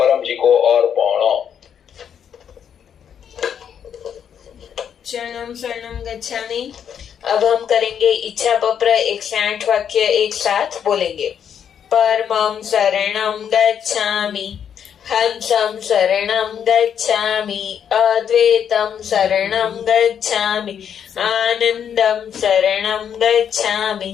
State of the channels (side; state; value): right; quieter; 8.4 dB